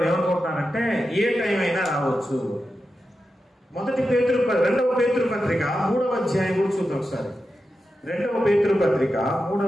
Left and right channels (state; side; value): normal; both; correlation 0.90